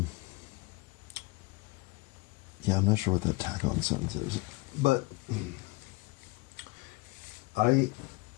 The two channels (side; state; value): right; quieter; 23.8 dB